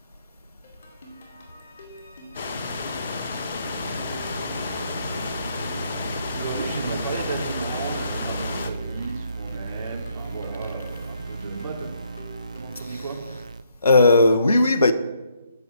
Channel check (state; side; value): inverted; both; correlation -0.72